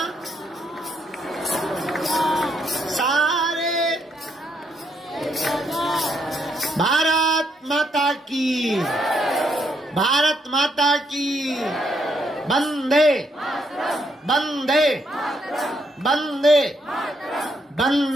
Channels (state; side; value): normal; both; correlation 0.75